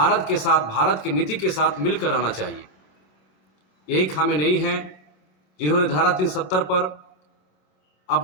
के साथ, भारत की नीति के साथ मिलकर रहना चाहिए। यही खामेनेई हैं जिन्होंने धारा 370 पर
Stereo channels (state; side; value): late; right; 26 ms